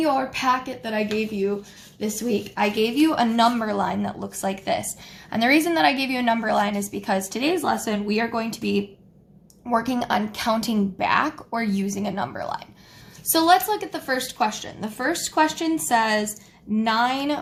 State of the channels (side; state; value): both; identical; correlation 1.00